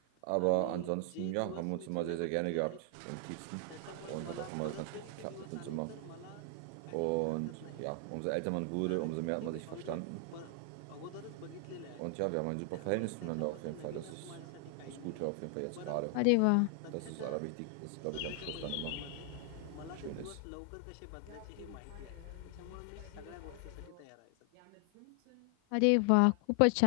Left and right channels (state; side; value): different; both; correlation 0.00